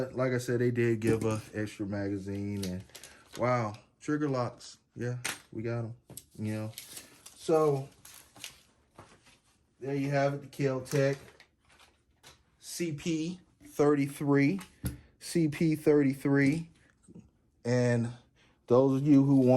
like I said, they did give a extra magazine, and wow, trigger locks. Yeah, we got them, you know. So there you have it, the Kel Tec CP33. CP33. And those of you who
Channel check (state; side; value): identical; both; correlation 1.00